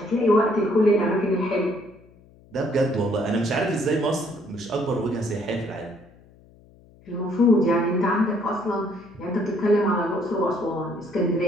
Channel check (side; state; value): left; noise; hum, 27 dB below the sound